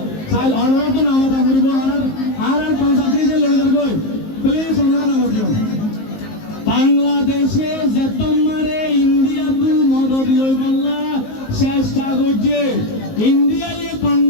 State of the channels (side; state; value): right; late; 19 ms